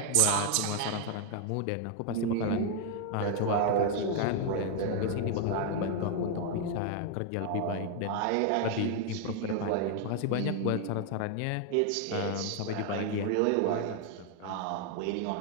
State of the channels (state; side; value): different; both; correlation 0.00